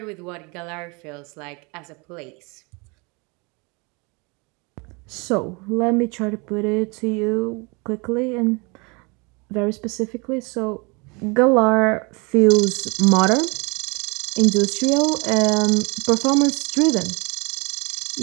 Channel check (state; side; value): quieter; left; 29.6 dB